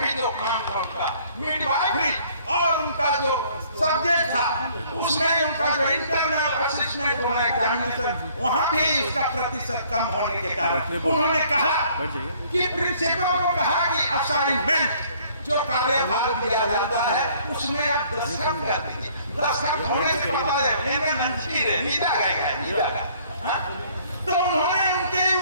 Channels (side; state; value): both; inverted; correlation -0.59